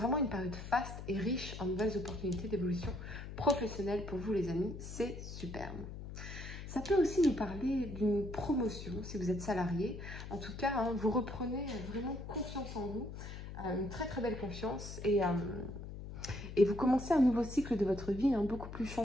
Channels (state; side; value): noise; left; hum, 10 dB below the sound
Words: une période faste et riche en nouvelles opportunités d'évolution professionnelle pour vous les amis. C'est superbe. Ça peut aussi nous parler d'une promotion si vous êtes salarié. En tout cas, vous reprenez vraiment confiance en vous, une très belle confiance et vous commencez un nouveau cycle de votre vie, beaucoup plus